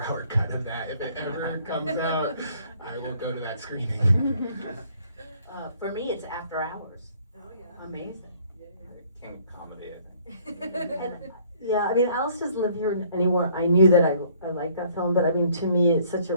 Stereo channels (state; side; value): inverted; both; correlation -0.60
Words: cut of that. If it ever comes out, I will go to that screening. For me, it's After Hours. Oh, yeah. Amazing. King of comedy, I think. And, yeah, I mean, Alice doesn't live here anymore. I knew that I liked that film, but I mean, to me,